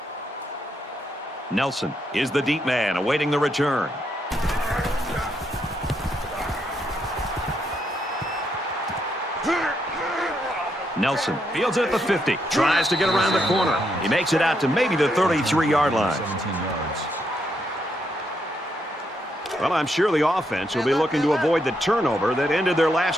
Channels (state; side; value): normal; both; correlation 0.78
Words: Nelson is the deep man awaiting the return. Nelson fields it at the 50. Tries to get around the corner. He makes it out to maybe the 33-yard line. 17 yards. Well, I'm sure the offense will be looking to avoid the turnover that ended their